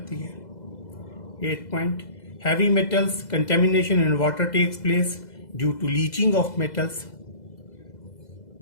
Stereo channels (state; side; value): late; right; 2.0 ms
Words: है। 8 point, heavy metals contamination in water takes place due to leaching of metals.